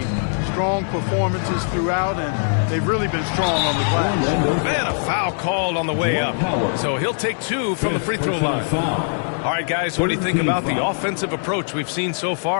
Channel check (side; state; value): right; silent; digital silence